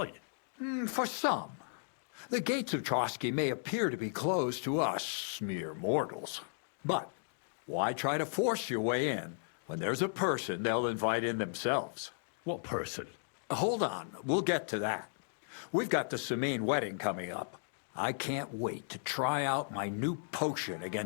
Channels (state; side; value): silent; right; digital silence